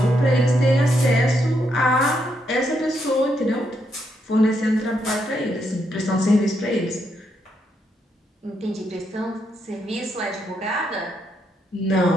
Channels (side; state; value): both; normal; correlation 0.78